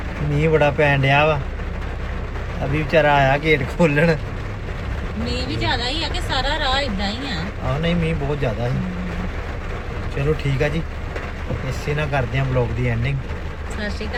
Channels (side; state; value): both; identical; correlation 1.00